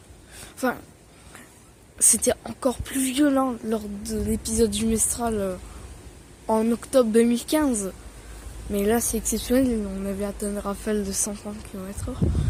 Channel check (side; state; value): both; identical; correlation 1.00